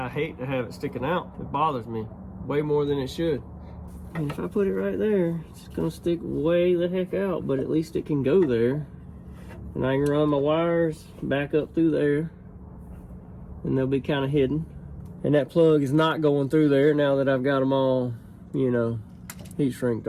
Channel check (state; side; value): identical; both; correlation 1.00